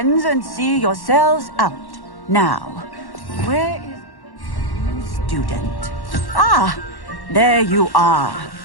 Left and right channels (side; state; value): right; late; 1.1 ms